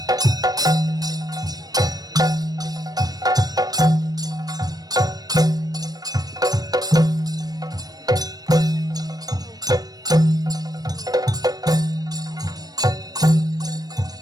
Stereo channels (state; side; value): late; left; 0.19 ms